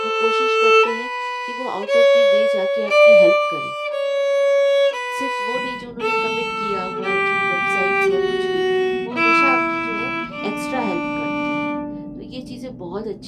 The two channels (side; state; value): both; identical; correlation 1.00